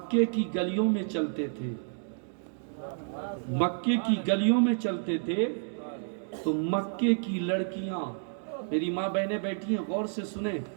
کی گلیوں میں چلتے تھے، مکے کی گلیوں میں چلتے تھے، تو مکے کی لڑکیاں، میری ماں بہنیں بیٹھی ہیں، غور سے سنیں،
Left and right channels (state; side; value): silent; left; digital silence